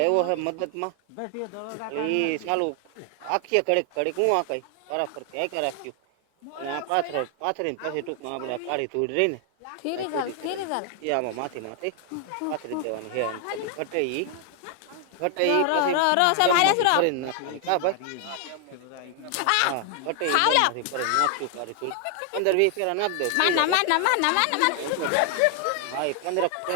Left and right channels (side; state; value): both; different; correlation 0.00